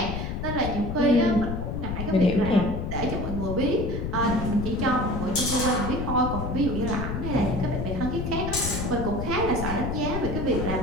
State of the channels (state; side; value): noise; left; rumble, 3 dB below the sound